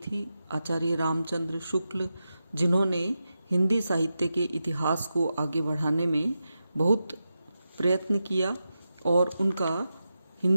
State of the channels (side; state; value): both; inverted; correlation -0.90